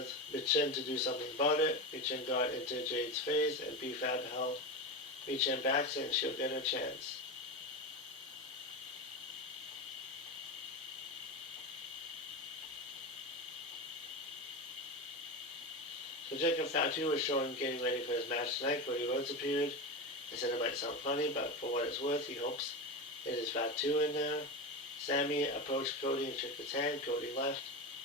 Michin to do something about it. Michin got into Jade's face, and B-Fab held Michin back, saying she'll get her chance. So Jacob Fatu was shown getting ready for his match tonight. Cody Rhodes appeared. He said it might sound funny, but for what it's worth, he hopes it is Fatu in there. Sammy approached Cody and shook his hand. Cody left.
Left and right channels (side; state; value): both; normal; correlation 0.20